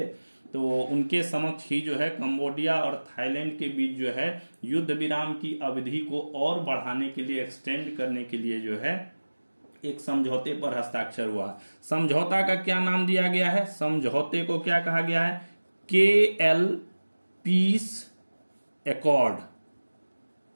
तो उनके समक्ष ही जो है कंबोडिया और थाईलैंड के बीच जो है युद्ध विराम की अवधि को और बढ़ाने के लिए, एक्सटेंड करने के लिए जो है एक समझौते पर हस्ताक्षर हुआ। समझौता का क्या नाम दिया गया है? समझौते को क्या कहा गया है? KL peace accord.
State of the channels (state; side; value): inverted; both; correlation -1.00